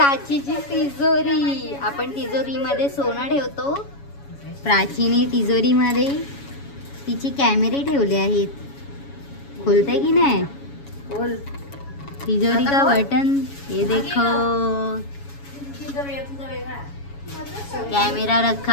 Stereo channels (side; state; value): right; late; 7.2 ms